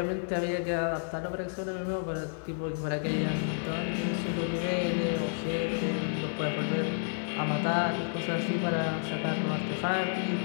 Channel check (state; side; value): silent; right; digital silence